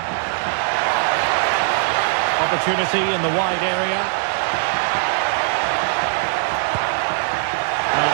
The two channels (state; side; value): silent; left; digital silence